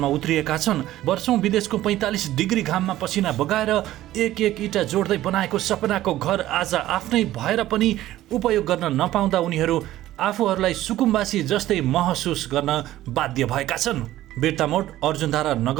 उत्रिएका छन्। वर्षौं विदेशको 45 डिग्री घाममा पसिना बगाएर एक इटा जोड्दै बनाएको सपनाको घर आज आफ्नै भएर पनि उपयोग गर्न नपाउँदा उनीहरू आफूहरूलाई सुकुम्बासी जस्तै महसुस गर्न बाध्य भएका छन्। बिर्तामोड अर्जुनधारा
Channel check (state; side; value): quieter; left; 14.6 dB